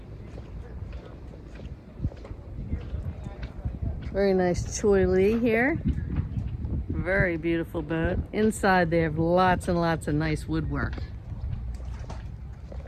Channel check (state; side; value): identical; both; correlation 1.00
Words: Very nice Choi Lee here. Very beautiful boat. Inside they have lots and lots of nice woodwork.